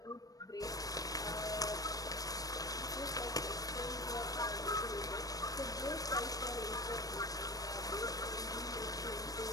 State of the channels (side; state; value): right; late; 0.18 ms